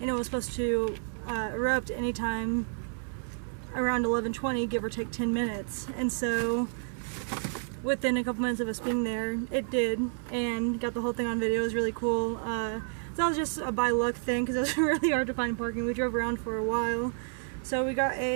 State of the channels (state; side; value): silent; left; 58 dB below the other